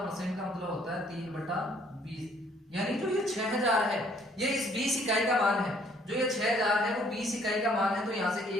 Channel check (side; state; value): both; normal; correlation 0.62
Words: का मतलब होता है 3/20, यानी जो ये 6000 है ये इस 20 इकाई का मान है। जो ये 6000 है वो 20 इकाई का मान है, तो यहां से